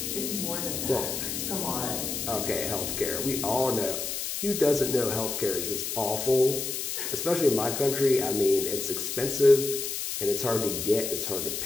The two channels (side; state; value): left; noise; hiss, 3 dB below the sound